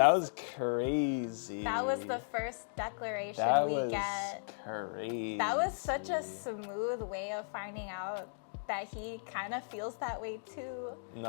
was crazy. That was the first declaration we get. Crazy. That was such a smooth way of finding out that he kind of feels that way too.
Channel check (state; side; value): silent; right; digital silence